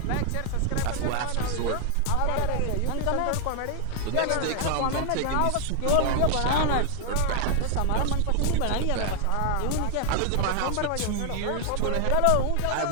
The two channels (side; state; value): both; different; correlation 0.00